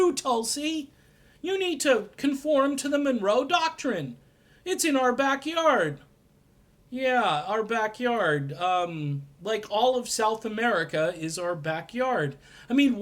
Tulsi? You need to conform to the Monroe Doctrine. It's in our backyard. Yeah, our backyard. Like all of South America is our backyard. I mean,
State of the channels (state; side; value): identical; both; correlation 1.00